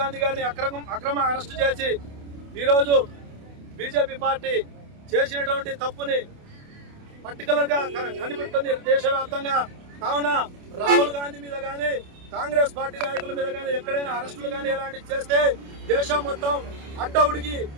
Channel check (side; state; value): left; late; 28 ms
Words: గారిని అక్రమ అరెస్టు చేసి ఈరోజు బీజేపీ పార్టీ చేసినటువంటి తప్పుని పర్టికులర్ గా కనిపెడుతుంది దేశవ్యాప్తంగా. కావున రాహుల్ గాంధీ మీద కానీ కాంగ్రెస్ పార్టీ నాయకుల మీద కానీ ఎక్కడైనా అరెస్టులు కానీ ఇలాంటివి చేస్తే దేశం మొత్తం అడ్డవుడికి